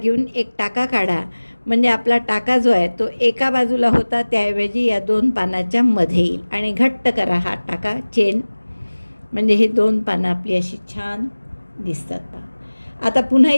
एक टाका काढा। म्हणजे आपला टाका जो आहे तो एका बाजूला होता, त्याऐवजी या 2 पानाच्या मध्ये येईल, आणि घट्ट करा हा टाका चेन, म्हणजे हे 2 पानं आपली अशी छान दिसतात पहा। आता पुन्हा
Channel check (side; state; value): both; inverted; correlation -1.00